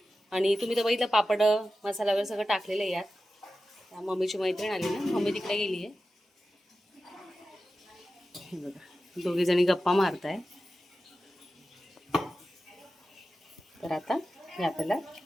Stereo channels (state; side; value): normal; both; correlation 0.93